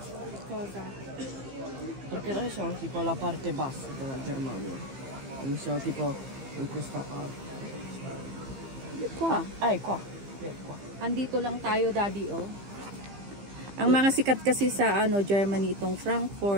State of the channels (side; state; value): left; late; 15 ms